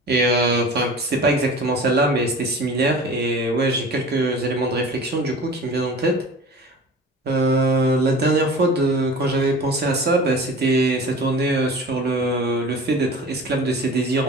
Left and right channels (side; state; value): both; normal; correlation 0.40